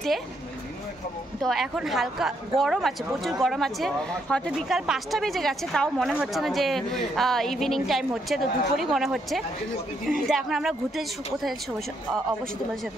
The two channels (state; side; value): normal; both; correlation 0.75